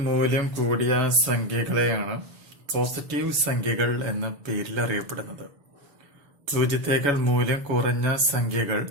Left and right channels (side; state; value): left; late; 7.0 ms